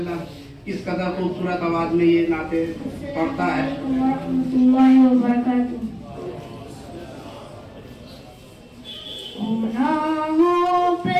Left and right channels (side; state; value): both; identical; correlation 1.00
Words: इस कदर खूबसूरत आवाज में ये नाते पढ़ता है। गुनाहों